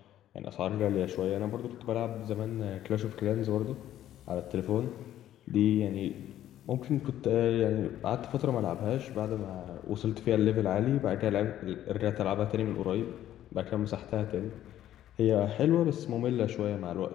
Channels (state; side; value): quieter; right; 12.3 dB